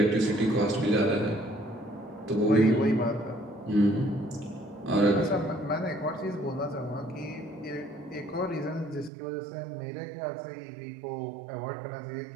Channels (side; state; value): left; drops out; at 9.1 s